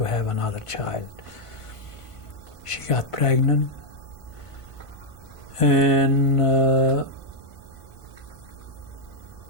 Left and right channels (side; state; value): right; late; 1.5 ms